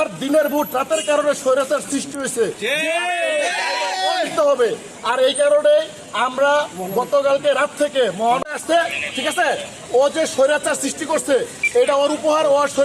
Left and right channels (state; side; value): identical; both; correlation 1.00